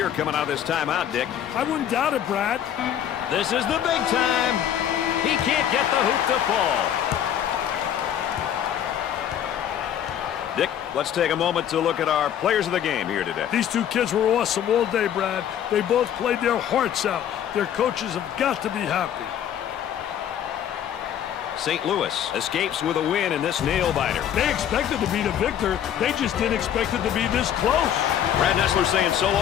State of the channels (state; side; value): quieter; right; 10.0 dB